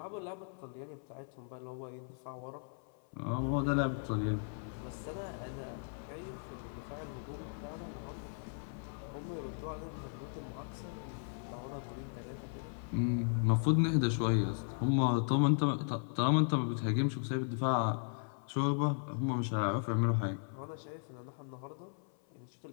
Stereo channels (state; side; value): silent; right; 53 dB below the other